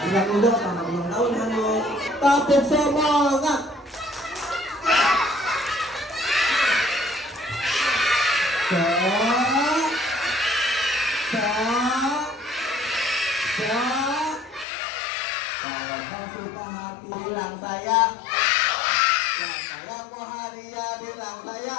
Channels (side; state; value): right; drops out; at 14.7 s